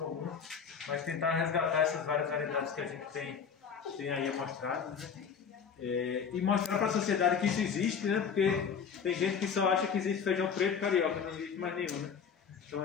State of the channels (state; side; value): quieter; right; 6.7 dB